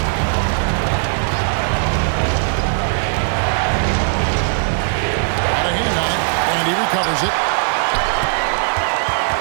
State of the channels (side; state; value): left; silent; 56 dB below the other